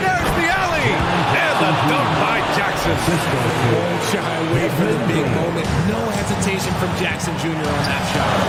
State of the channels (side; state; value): both; identical; correlation 1.00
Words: there's the alley. And the dunk by Jackson. Won't shy away from the big moment. No hesitation from Jackson Jr. on that shot.